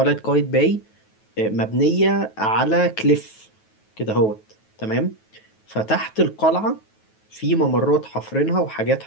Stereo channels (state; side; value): late; right; 9.3 ms